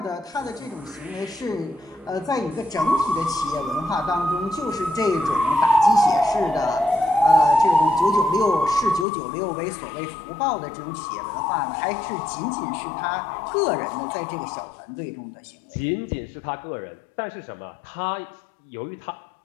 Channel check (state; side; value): drops out; right; at 9.1 s